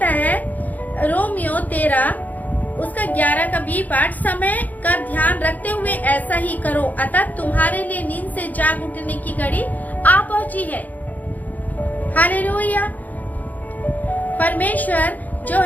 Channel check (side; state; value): right; late; 0.080 ms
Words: है, रोमियो 13 उसका 11 का बी पाठ, समय का ध्यान रखते हुए ऐसा ही करो, अतः तुम्हारे लिए नींद से जाग उठने की घड़ी आ पहुंची है। हालेलुया। परमेश्वर जो